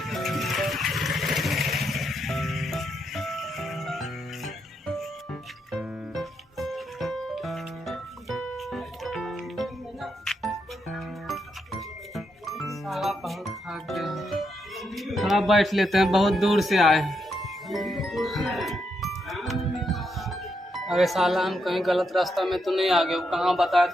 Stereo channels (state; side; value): normal; both; correlation 0.81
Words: साला बहुत थक गए, थोड़ा बैठ लेते हैं, बहुत दूर से आए हैं। अरे साला हम कहीं गलत रास्ता में तो नहीं आ गए? वो कहाँ बताया